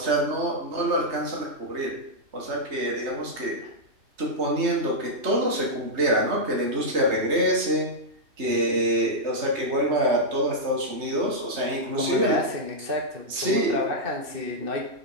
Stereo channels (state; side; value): late; left; 3.2 ms